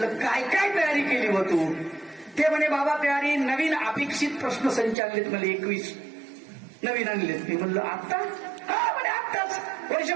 काय काय तयारी केली व तू? ते म्हणे बाबा तयारी, नवीन अपेक्षित प्रश्न संच आणलेत मला 21 नवीन आणलेत. मी म्हणलं आत्ता? हा म्हणे आत्ताच,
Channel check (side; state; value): left; drops out; at 5.0 s